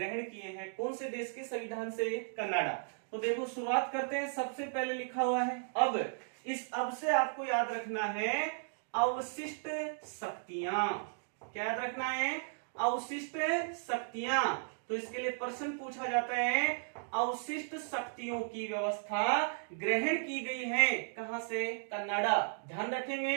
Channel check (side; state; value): left; silent; digital silence